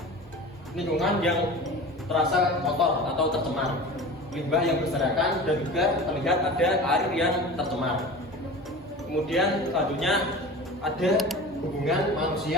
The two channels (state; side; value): normal; both; correlation 0.35